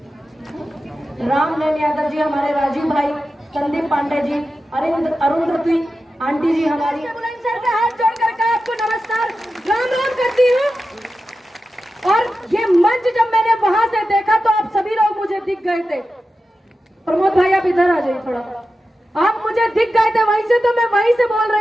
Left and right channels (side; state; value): both; normal; correlation 0.92